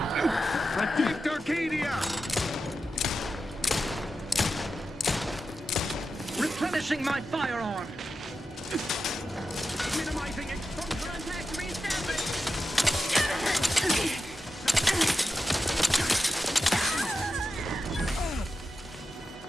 Protect Arcadia! Replenishing my firearm! Minimizing exposure and attack reestablish!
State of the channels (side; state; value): both; normal; correlation 0.90